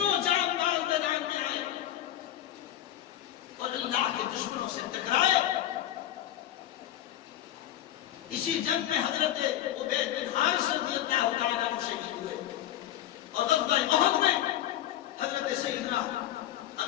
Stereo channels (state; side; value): quieter; right; 12.7 dB